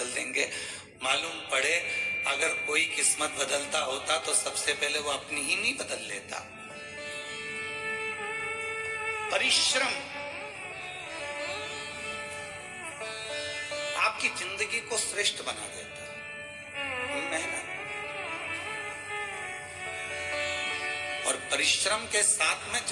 देंगे। मालूम पड़े अगर कोई किस्मत बदलता होता तो सबसे पहले वो अपनी ही नहीं बदल लेता। परिश्रम आपकी जिंदगी को श्रेष्ठ बना देता है, मेहनत और परिश्रम के साथ में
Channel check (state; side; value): identical; both; correlation 1.00